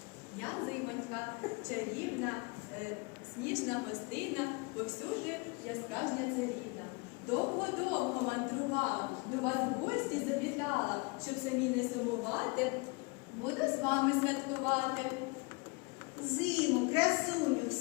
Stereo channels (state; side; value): quieter; right; 28.4 dB